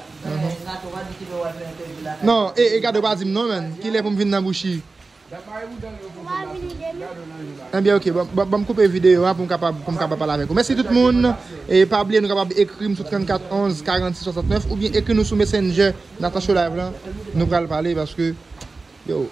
Non, et garde pas dire non, man. Qui est pour me venir dans la bouche? Eh bien, ok, je vais couper la vidéo pour me capable parler avec vous. Merci tout le monde. Et pas oublier, nous sommes capables d'écrire sur 34 11 46 69 ou bien écrire nous sur Messenger Nathan Chola Live. Nous allons parler parce que. Yo,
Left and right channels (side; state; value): left; quieter; 3.8 dB